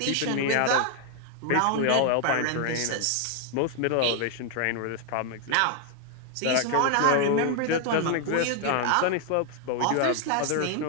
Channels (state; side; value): different; both; correlation 0.00